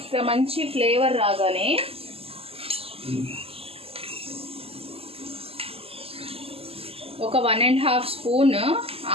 మంచి ఫ్లేవర్ రాగానే ఒక 1.5 స్పూన్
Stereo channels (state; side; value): late; left; 0.28 ms